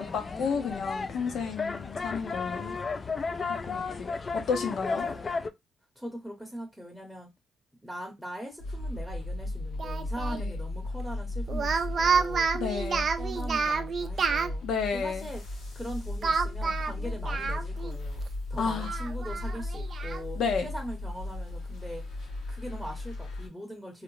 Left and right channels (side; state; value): both; normal; correlation 0.78